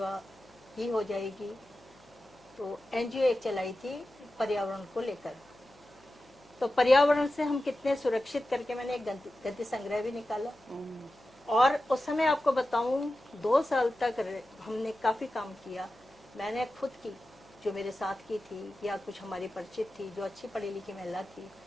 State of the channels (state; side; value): noise; left; hum, 28 dB below the sound